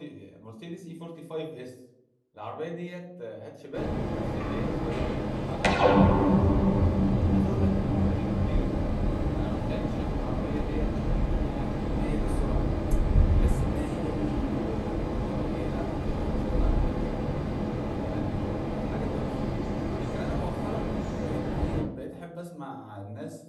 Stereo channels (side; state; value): both; identical; correlation 1.00